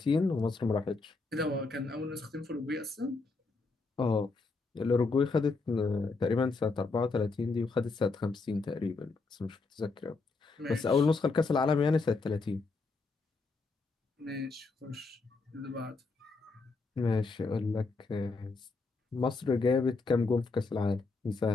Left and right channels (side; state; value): right; quieter; 3.9 dB